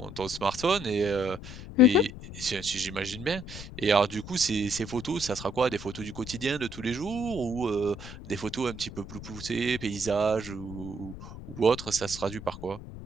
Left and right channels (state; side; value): noise; left; rumble, 12 dB below the sound